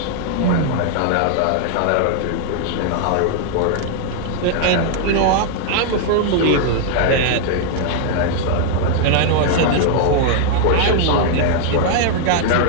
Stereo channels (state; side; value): different; both; correlation 0.00